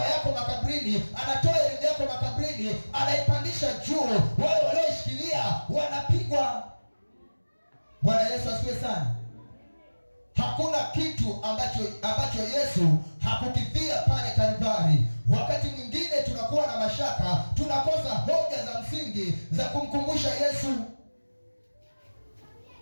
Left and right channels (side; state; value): both; inverted; correlation -1.00